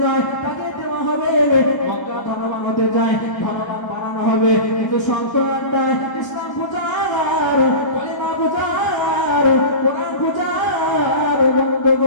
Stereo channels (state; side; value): late; right; 1.2 ms